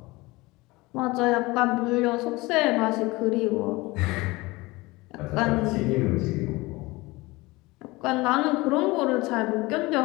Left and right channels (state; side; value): quieter; right; 22.0 dB